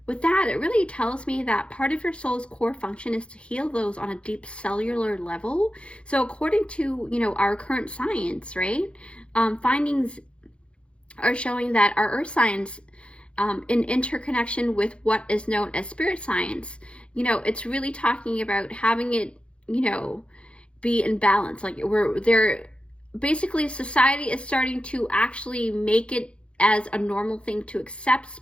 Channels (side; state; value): right; late; 0.059 ms